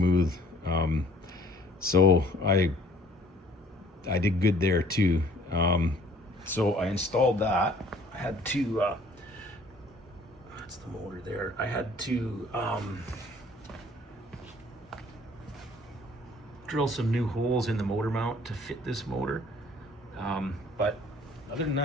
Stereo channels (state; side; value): normal; both; correlation 0.56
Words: So I did good there too. So I installed that. I had to, that's the motor there. I had to drill some new holes in the motor mount to fit this motor. But other than